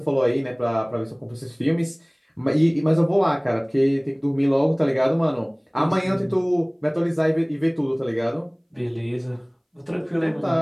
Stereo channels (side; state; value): both; identical; correlation 1.00